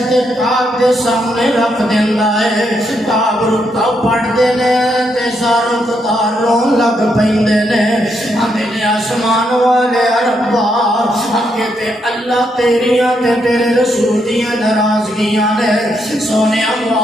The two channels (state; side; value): normal; both; correlation 0.78